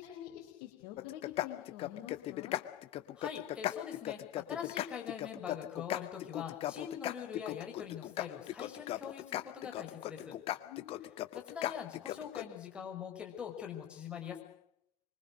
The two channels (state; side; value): quieter; right; 11.2 dB